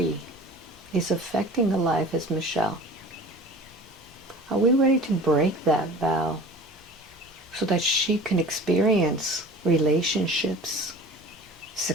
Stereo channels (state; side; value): normal; both; correlation 0.41